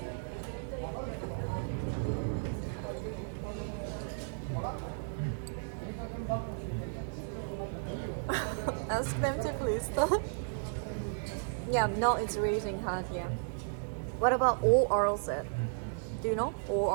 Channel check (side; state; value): left; silent; digital silence